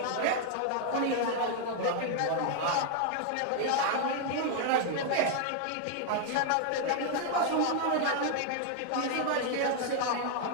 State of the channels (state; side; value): different; both; correlation 0.00